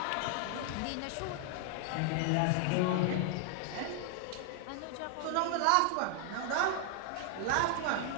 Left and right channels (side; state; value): both; different; correlation 0.00